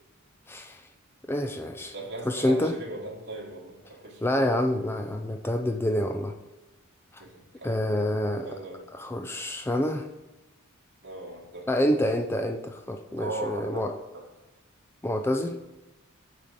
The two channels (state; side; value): normal; both; correlation 0.74